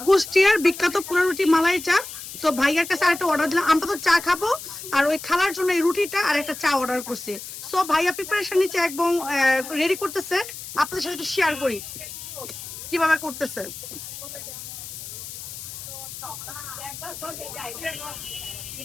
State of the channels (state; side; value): noise; left; hiss, 11 dB below the sound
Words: কুষ্টিয়ার বিখ্যাত পোড়া রুটি মালাই চা। তো ভাইয়ার কাছে আরেকটা অর্ডার দিলাম, আমরা তো চা খাবো, আর ওই খালার জন্য এই রুটিটা আর একটা চা অর্ডার করছি। সো ভাইয়া প্রিপারেশন নিচ্ছে এবং রেডি করতেছে, আপনাদের সাথে একটু শেয়ার করি কিভাবে করতেছে।